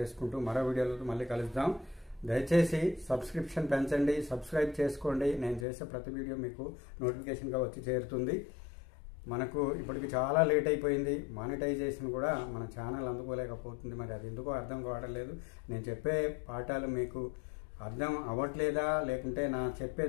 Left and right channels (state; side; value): drops out; right; at 5.7 s